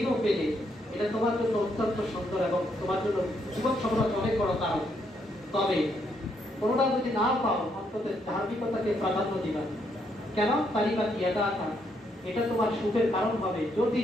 পেলে, এটা তোমার জন্য অত্যন্ত সুন্দর এবং তোমার জন্য জীবন সফলতার অনেক বড় কারণ। তবে কোনোটা যদি না পাও, অন্তত ধার্মিকতাকে প্রাধান্য দিবা। কেন? তালিবা কি এটা তোমার সুখের কারণ হবে। যদি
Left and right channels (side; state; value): both; normal; correlation 0.75